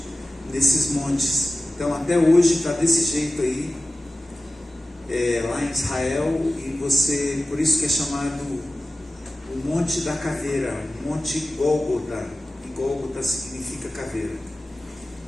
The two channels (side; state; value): both; normal; correlation 0.95